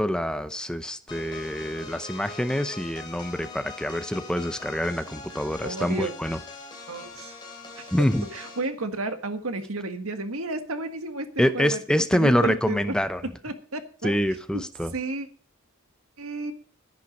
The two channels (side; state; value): both; normal; correlation 0.77